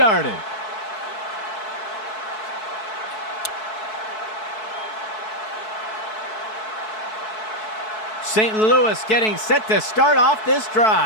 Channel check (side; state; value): right; late; 4.6 ms